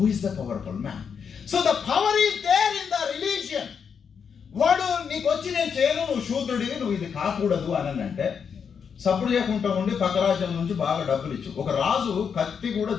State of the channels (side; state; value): right; quieter; 6.7 dB